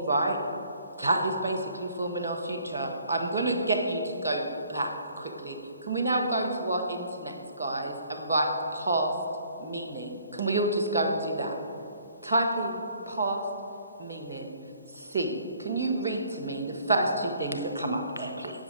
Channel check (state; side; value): inverted; both; correlation -0.60